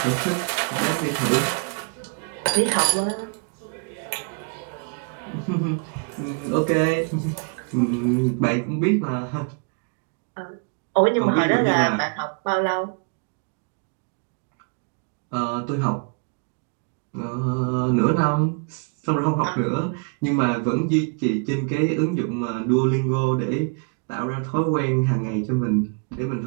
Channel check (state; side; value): quieter; left; 38.0 dB